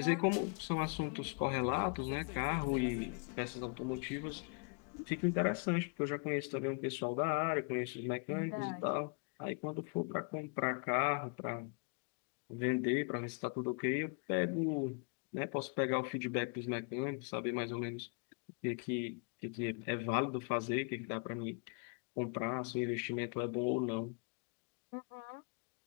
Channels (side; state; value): right; quieter; 35.6 dB